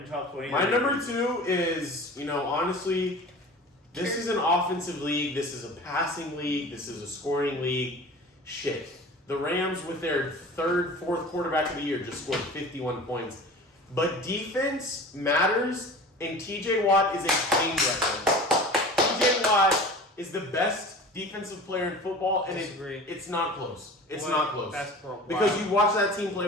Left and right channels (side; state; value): both; normal; correlation 0.39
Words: top 20. My number 2 is, honestly, this is an offensive league. This is a passing league. This is a scoring league. Shit. The Rams, with their 3rd, 4th quarterback of the year, just scored 51 points. But defense matters, and TJ Watt is a clean record. TJ Watt is the best defensive player in football, and it's not close. It's not close. That's pro. Because you watch that team